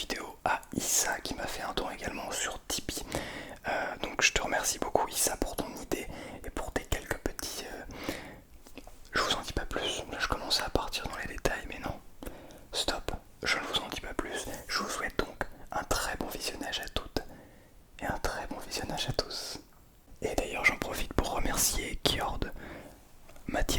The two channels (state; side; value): identical; both; correlation 1.00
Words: à Issa qui m'a fait un don également sur Tipeee. Donc je te remercie beaucoup Issa pour ton idée et pour tes quelques petits... Je vous en dis pas plus, là je commençais à partir dans les détails mais non. Stop, je ne vous en dis pas plus. Je vous souhaite donc un très bon visionnage à toutes et un très bon visionnage à tous. Et d'ailleurs j'en profite pour remercier Kiord,